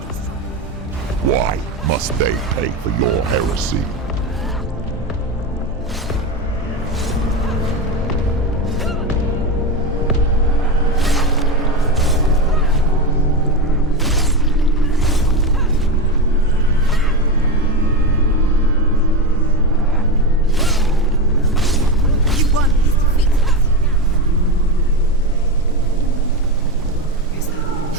Why must they pay for your heresy?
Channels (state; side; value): normal; both; correlation 0.18